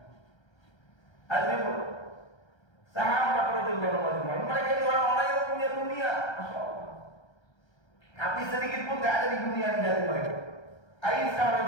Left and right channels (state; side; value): late; right; 1.3 ms